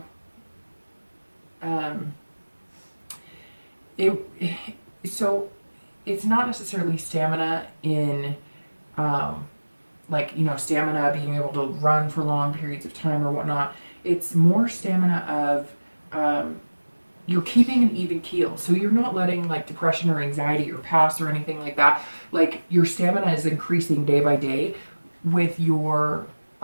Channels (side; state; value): both; inverted; correlation -1.00